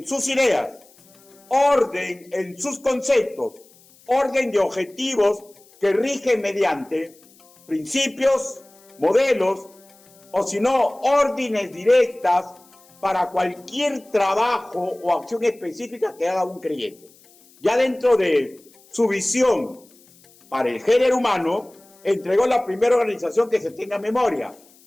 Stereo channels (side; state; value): left; noise; hiss, 28 dB below the sound